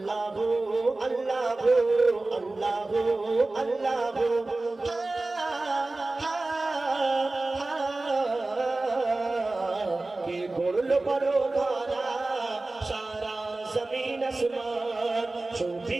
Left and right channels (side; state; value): left; quieter; 3.1 dB